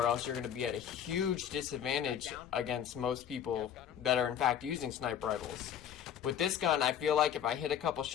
else you're going to be at a huge disadvantage against most people that are in fact using sniper rifles. With this gun, I feel like if I hit a couple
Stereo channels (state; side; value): quieter; right; 9.1 dB